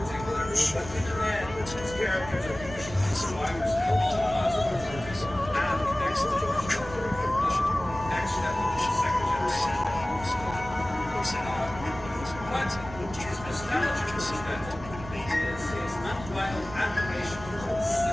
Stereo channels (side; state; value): right; noise; rumble, 13 dB below the sound